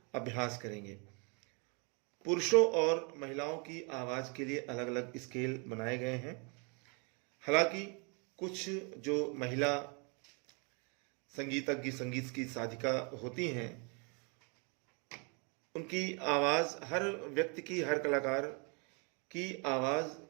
अभ्यास करेंगे। पुरुषों और महिलाओं की आवाज के लिए अलग अलग स्केल बनाए गए हैं। हालांकि कुछ जो महिला संगीतज्ञ, संगीत की साधिका होती हैं, उनकी आवाज, हर व्यक्ति की, हर कलाकार की आवाज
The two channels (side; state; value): left; quieter; 34.5 dB